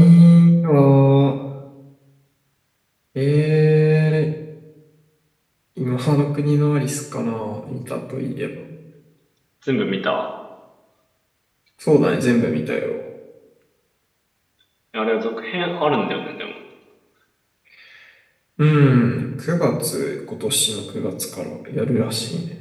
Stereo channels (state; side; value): identical; both; correlation 1.00